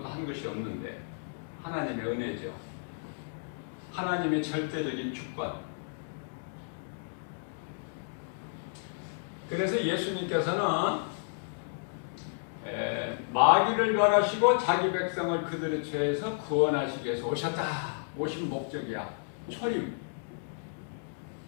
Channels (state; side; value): silent; right; digital silence